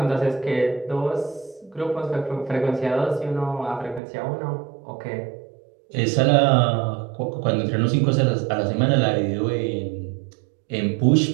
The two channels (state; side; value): drops out; left; at 4.0 s